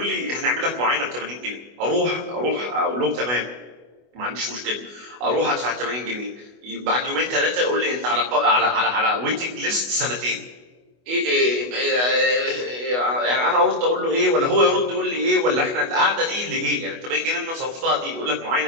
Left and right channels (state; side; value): late; left; 24 ms